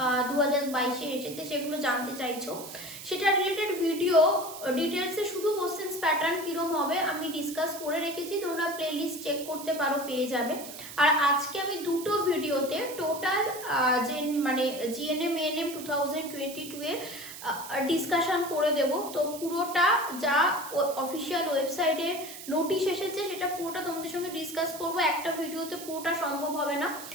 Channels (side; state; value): right; noise; hiss, 12 dB below the sound